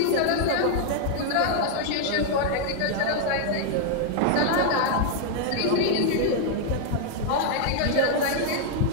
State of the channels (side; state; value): both; different; correlation 0.00